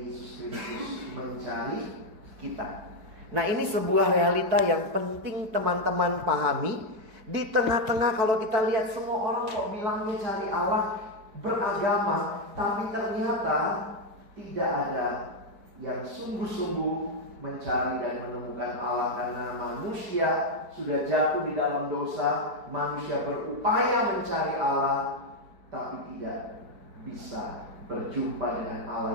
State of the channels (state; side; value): late; left; 4.6 ms